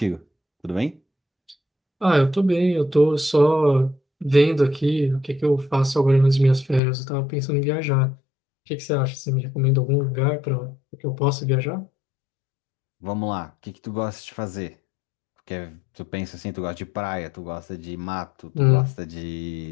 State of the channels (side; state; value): right; drops out; at 6.8 s